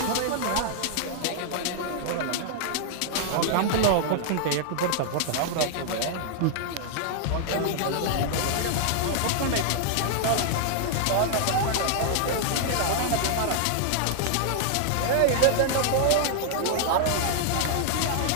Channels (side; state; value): both; different; correlation -0.01